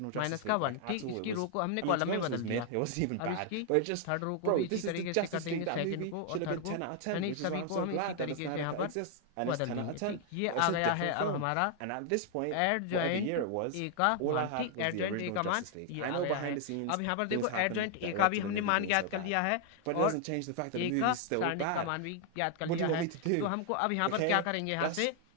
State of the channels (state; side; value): different; both; correlation 0.00